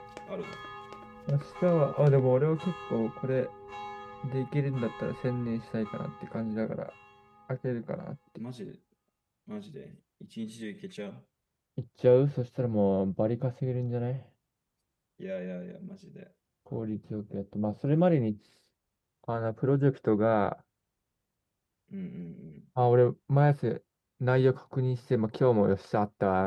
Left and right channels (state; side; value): identical; both; correlation 1.00